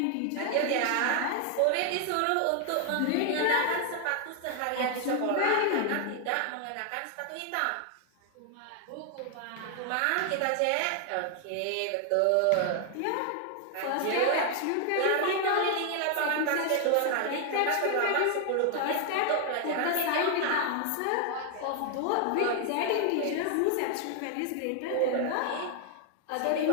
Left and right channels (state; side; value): different; both; correlation 0.00